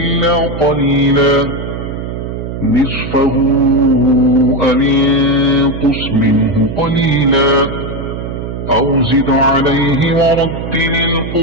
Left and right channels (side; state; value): right; noise; hum, 7 dB below the sound